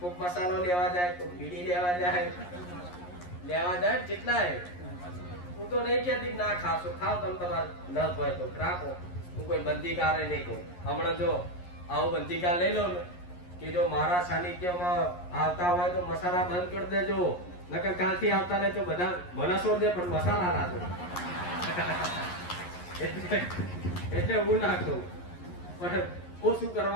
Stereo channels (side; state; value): right; late; 11 ms